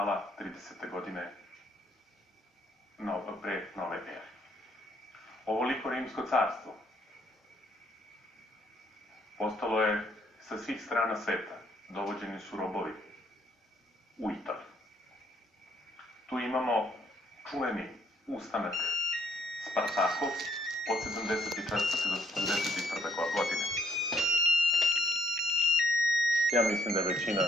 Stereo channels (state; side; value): normal; both; correlation 0.69